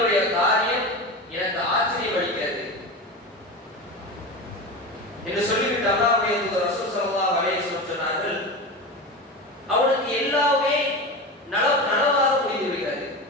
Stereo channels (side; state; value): both; normal; correlation 0.25